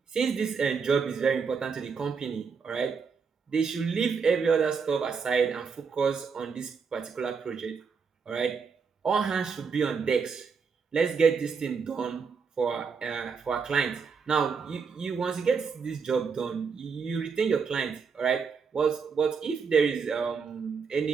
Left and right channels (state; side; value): quieter; left; 5.6 dB